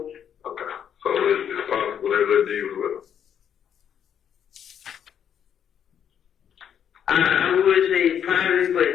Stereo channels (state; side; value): quieter; right; 8.7 dB